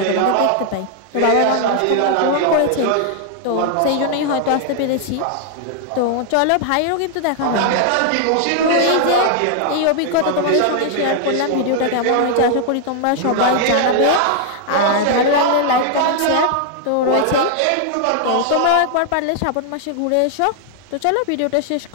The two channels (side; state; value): both; different; correlation 0.00